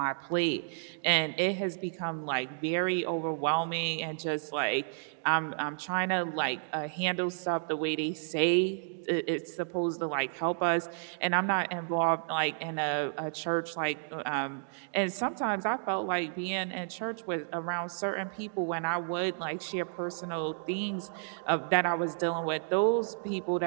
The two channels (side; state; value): left; silent; digital silence